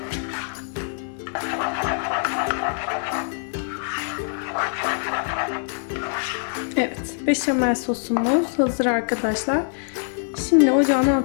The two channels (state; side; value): silent; right; 63 dB below the other